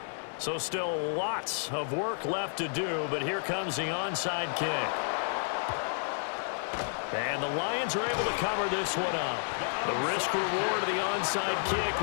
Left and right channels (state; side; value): silent; right; digital silence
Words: So still lots of work left to do, but here comes the onside kick. And the Lions are able to cover this one up. The risk reward of the onside kick,